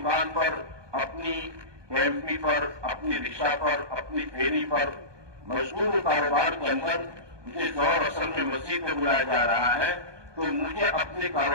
پر، اپنی ایم پی پر، اپنی رکشا پر، اپنی پھیری پر مشغول کاروبار کے اندر مجھے دور اصل میں مسجد میں بلایا جا رہا ہے تو مجھے اپنے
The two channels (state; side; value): late; left; 1.2 ms